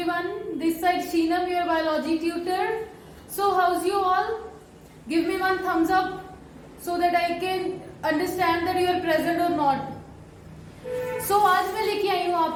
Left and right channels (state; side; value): identical; both; correlation 1.00